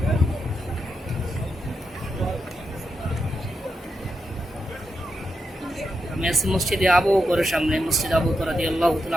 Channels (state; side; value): normal; both; correlation 0.85